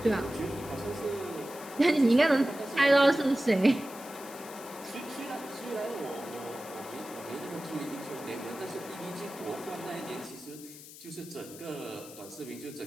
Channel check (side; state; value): left; noise; hiss, 16 dB below the sound